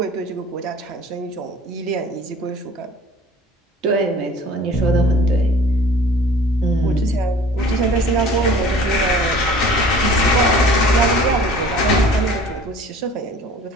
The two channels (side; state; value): both; normal; correlation 0.47